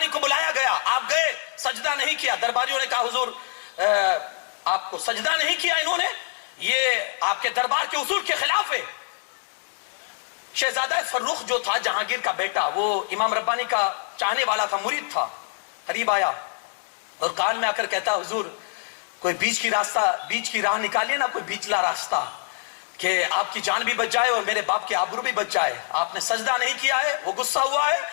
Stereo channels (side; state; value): right; silent; 59 dB below the other